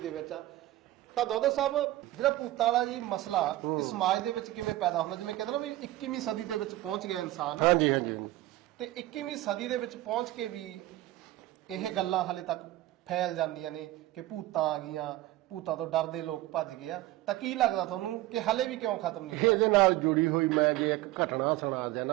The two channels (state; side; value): quieter; left; 16.3 dB